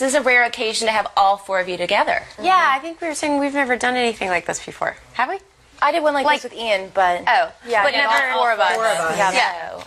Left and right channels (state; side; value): identical; both; correlation 1.00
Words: is a rare occasion to have all four of you together. Yeah, I think we were saying we've never done anything like this before. Have we? I did one like this with Ian, but yeah, but never all four of us.